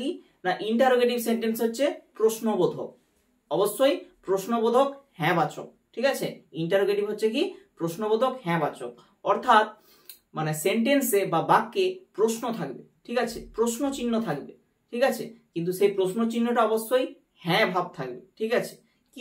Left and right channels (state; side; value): identical; both; correlation 1.00